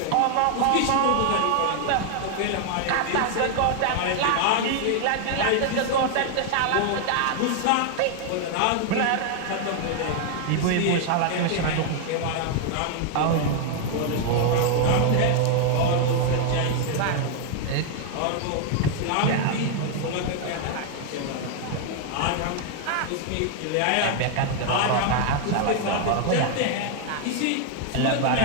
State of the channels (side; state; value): both; different; correlation 0.00